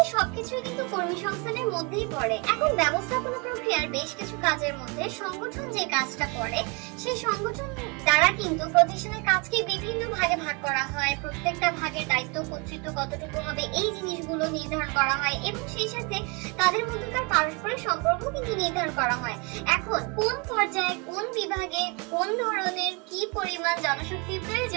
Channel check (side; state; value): left; quieter; 31.1 dB